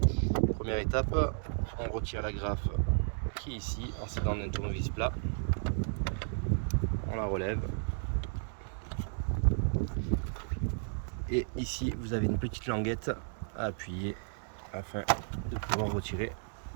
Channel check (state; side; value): silent; left; digital silence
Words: Première étape, on retire la graffe qui est ici en s'aidant d'un tournevis plat. On la relève. Et ici vous avez une petite languette à appuyer afin de pouvoir retirer